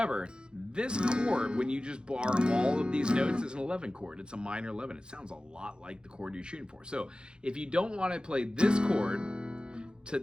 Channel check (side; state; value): left; late; 0.049 ms